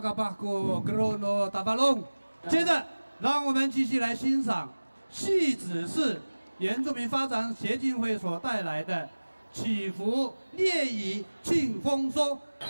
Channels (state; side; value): inverted; both; correlation -1.00